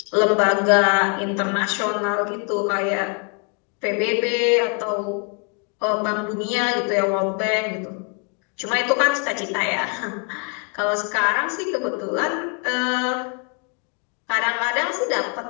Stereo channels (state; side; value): quieter; right; 38.3 dB